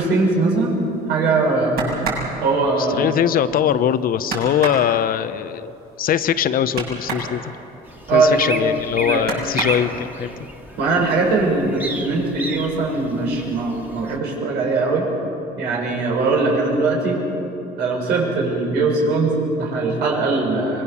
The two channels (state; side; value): normal; both; correlation 0.39